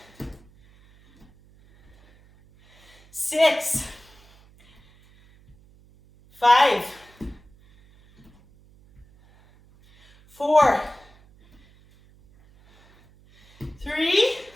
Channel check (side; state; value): right; noise; hum, 28 dB below the sound